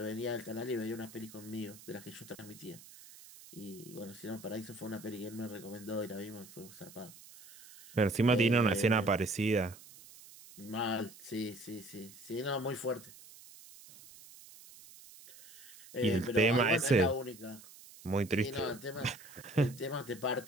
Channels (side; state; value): right; noise; hiss, 19 dB below the sound